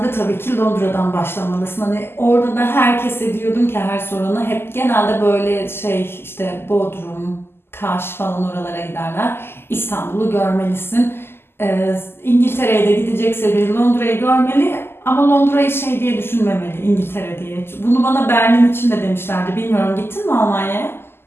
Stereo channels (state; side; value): late; right; 0.12 ms